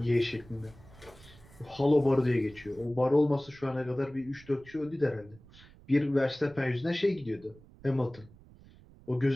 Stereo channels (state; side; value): noise; right; rumble, 23 dB below the sound